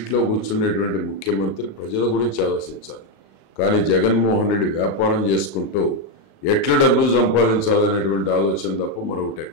కూర్చున్నటువంటి ముఖ్యమంత్రి ప్రజల గురించి ఆలోచించాలి. కానీ జగన్మోహన్ రెడ్డి వ్యాపారం చేసుకుంటూ ఎట్లా డబ్బులు సంపాదించాలనేటువంటి ఆలోచన తప్ప మరొకటి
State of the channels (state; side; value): late; right; 36 ms